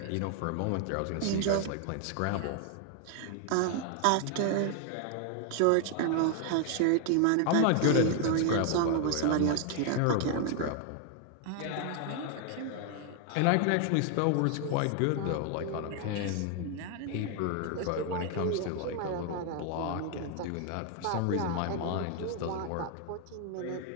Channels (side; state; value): both; different; correlation 0.00